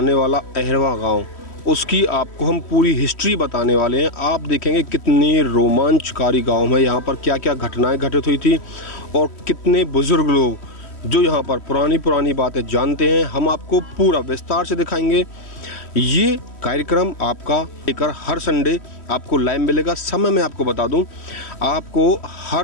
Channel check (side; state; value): right; late; 3.1 ms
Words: वाला अहरवा गांव, उसकी आपको हम पूरी हिस्ट्री बताने वाले हैं। आप देखेंगे कितनी रोमांचकारी गांव है, यहाँ पर क्या क्या घटनाएं घटित हुई थी और कितने बुज़ुर्ग लोग जो यहाँ पर पुरानी बातें जानते हैं, हम आपको पूरा विस्तार से दिखाएंगे। ये कार्यक्रम आपका लेकर हर संडे आपको लाइव मिलेगा। समय मैं आपको बता दूं, आपको